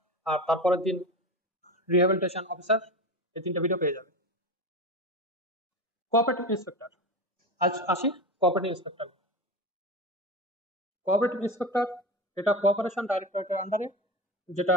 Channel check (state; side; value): normal; both; correlation 0.25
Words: আর তারপরের দিন রিহ্যাবিলিটেশন অফিসার, এই তিনটা ভিডিও পেয়ে যাবে। কোঅপারেটিভ ইন্সপেক্টর, আজ আসি কোঅপারেটিভ ইন্সপেক্টর। কোঅপারেটিভ ইন্সপেক্টর এটা কোঅপারেশন ডাইরেক্টরেটের আন্ডারে, যেটা